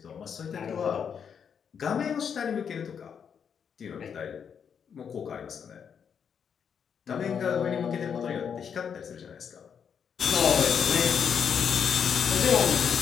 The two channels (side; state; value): right; quieter; 7.3 dB